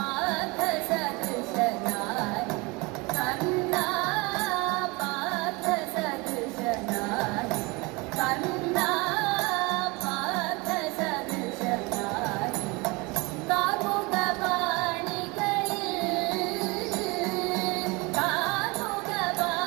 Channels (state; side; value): quieter; left; 26.1 dB